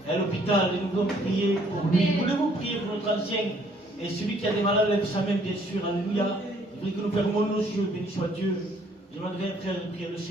est à l'hôpital et nous voulons prier pour lui. Voulez-vous prier pour notre ancien? Et celui qui a des malades lève sa main, bien sûr. Alléluia. Je prie que nous fermons nos yeux. Béni soit Dieu. Je demanderai un frère de prier le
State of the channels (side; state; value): both; normal; correlation 0.63